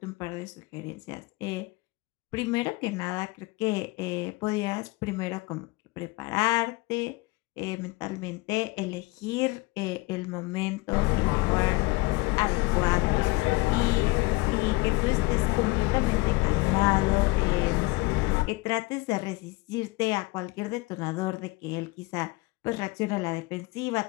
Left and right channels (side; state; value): right; quieter; 22.7 dB